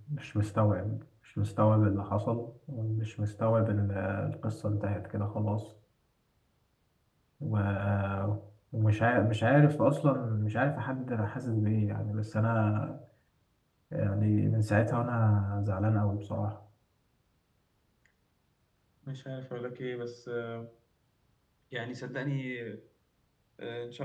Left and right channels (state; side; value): identical; both; correlation 1.00